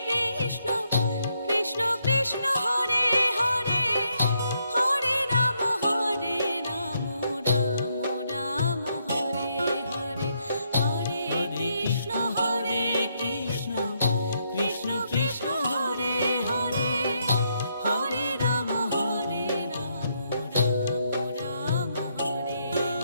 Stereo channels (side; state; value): both; inverted; correlation -0.76